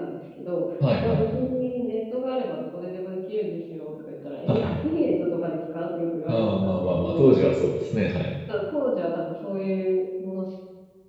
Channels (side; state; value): both; identical; correlation 1.00